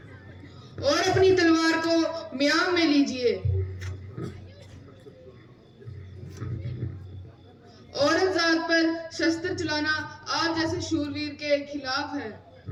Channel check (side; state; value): both; identical; correlation 1.00